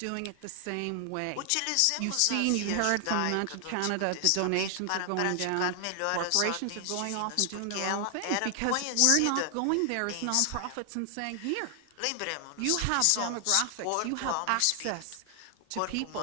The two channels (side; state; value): both; different; correlation 0.00